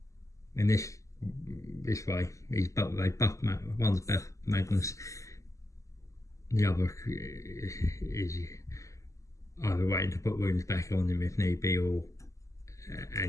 in this way, they buff one's buff Magnus, the other is either waiting to put wounds back on him if need be, or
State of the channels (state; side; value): late; right; 0.16 ms